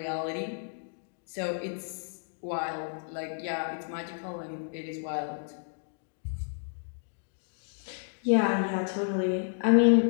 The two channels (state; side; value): silent; right; digital silence